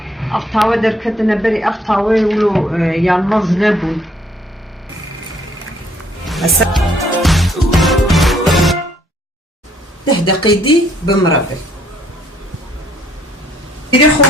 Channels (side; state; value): both; normal; correlation 0.64